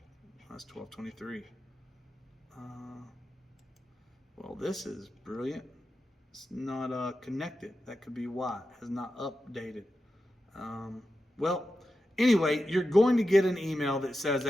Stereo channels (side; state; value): both; normal; correlation 0.90